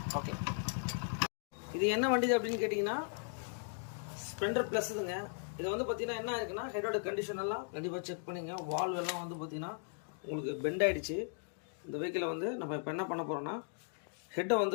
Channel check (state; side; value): silent; right; digital silence